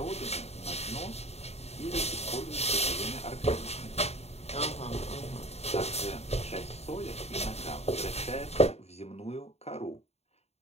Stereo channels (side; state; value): right; late; 0.31 ms